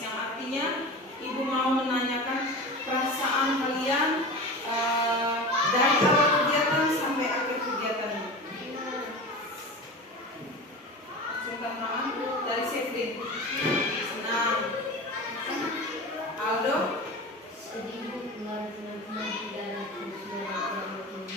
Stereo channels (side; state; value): both; normal; correlation 0.31